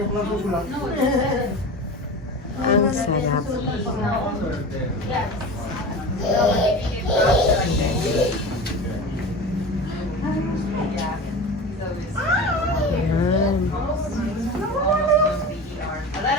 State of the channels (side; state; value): both; normal; correlation 0.32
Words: Ang sarap. Ayan.